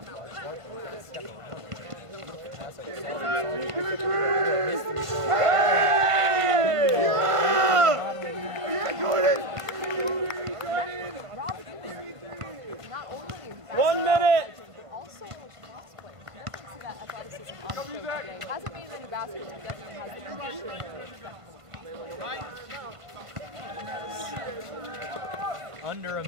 Not only 1 minute. also cross-play. Definitely see that athleticism on the field today. Hasn't made it in the basket, but definitely has the conditioning. under a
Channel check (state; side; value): late; left; 1.5 ms